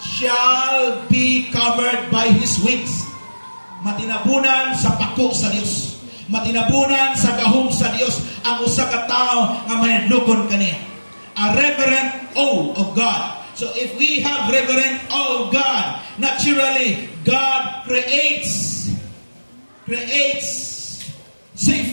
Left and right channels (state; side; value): inverted; both; correlation -1.00